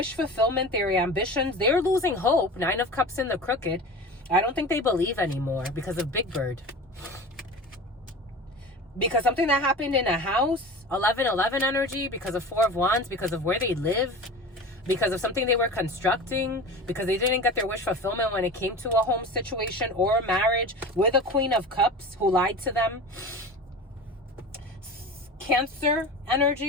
fulfillment, their ambitions, they're losing hope. 9 of Cups in the crooked. I don't think they believe anymore because of Big Bird. Because something that happened in a house, 11-11 energy, because of 4 of Wands, because of where they live, because of something they were constructing, because they didn't get their wish fulfillment when it came to a home situation or a marriage, with a Queen of Cups who lied to them. Cancer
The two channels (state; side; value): normal; both; correlation 0.34